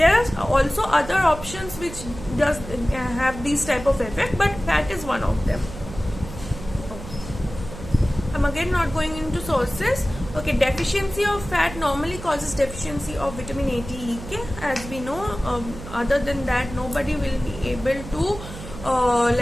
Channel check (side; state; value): right; noise; hum, 12 dB below the sound